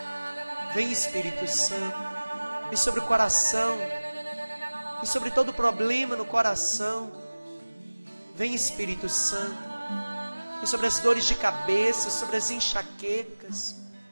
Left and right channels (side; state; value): both; inverted; correlation -1.00